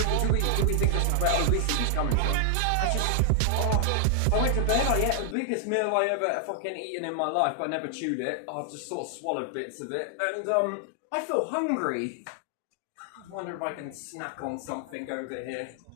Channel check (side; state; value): both; different; correlation 0.00